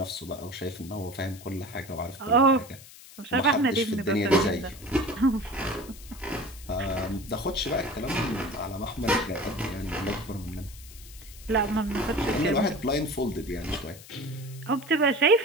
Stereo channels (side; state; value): left; noise; hiss, 18 dB below the sound